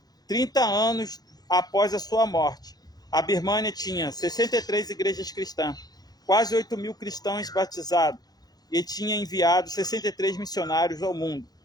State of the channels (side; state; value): right; late; 0.19 ms